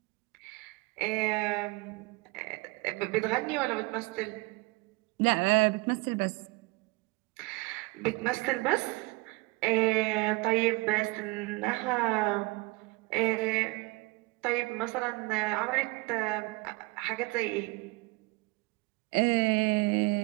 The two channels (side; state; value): left; quieter; 25.4 dB